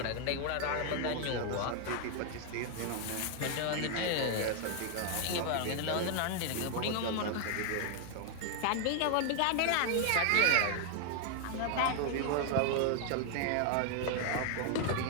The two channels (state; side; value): different; both; correlation 0.00